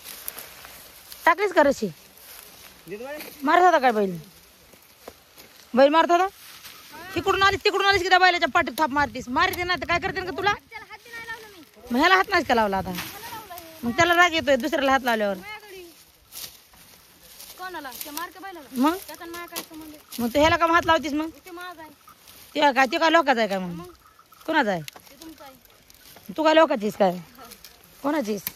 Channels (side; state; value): both; identical; correlation 1.00